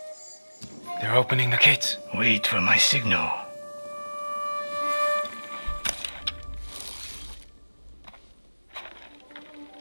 They're opening the gates. Wait for my signal.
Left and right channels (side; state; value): both; inverted; correlation -1.00